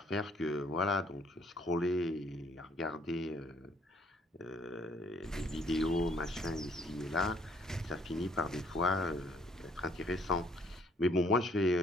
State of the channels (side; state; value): both; normal; correlation 0.64